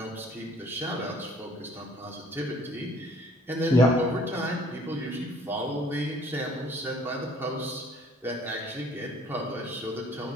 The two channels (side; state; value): both; normal; correlation 0.56